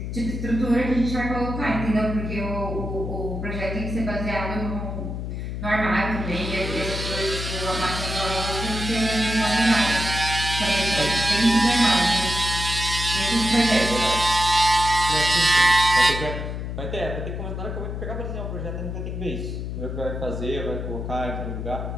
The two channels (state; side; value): noise; left; hum, 5 dB below the sound